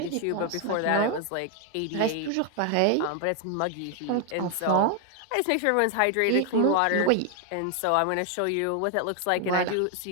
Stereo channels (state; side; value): different; both; correlation 0.00